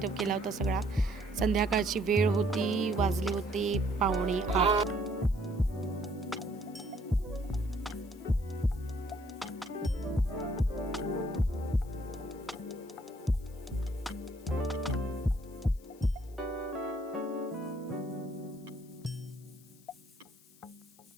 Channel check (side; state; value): left; noise; hiss, 26 dB below the sound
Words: केला होता सगळा. संध्याकाळची वेळ होती, वाजले होते 7:45.